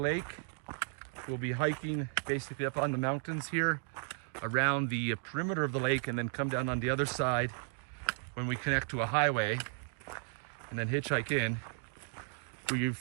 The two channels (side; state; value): left; silent; 55 dB below the other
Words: We'll be hiking basically up on the mountains here around the perimeter of the lake, and then come down on the other side when we connect to a highway, and then hitchhike in. We've